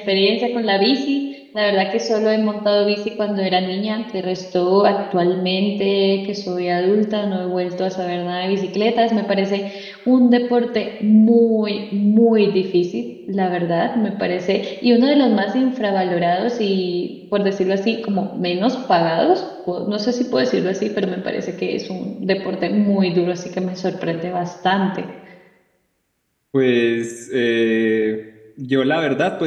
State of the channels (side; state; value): both; identical; correlation 1.00